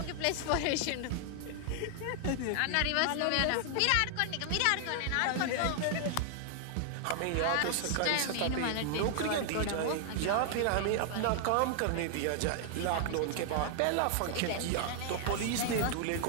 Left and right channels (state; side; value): different; both; correlation 0.00